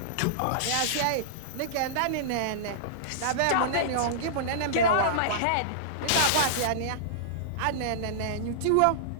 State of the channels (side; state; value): both; different; correlation -0.03